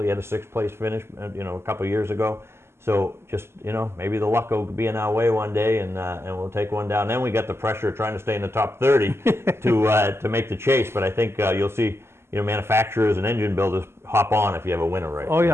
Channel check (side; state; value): left; late; 0.12 ms